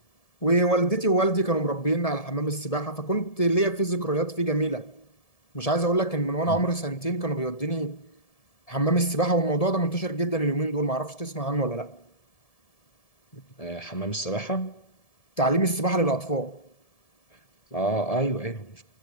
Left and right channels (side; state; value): right; late; 1.7 ms